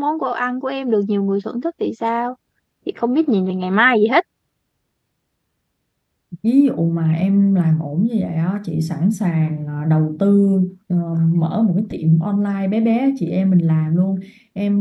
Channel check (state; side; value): identical; both; correlation 1.00